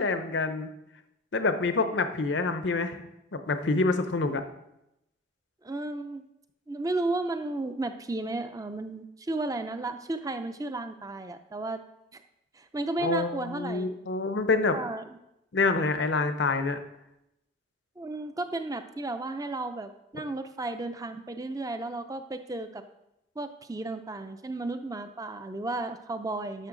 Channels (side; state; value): both; normal; correlation 0.37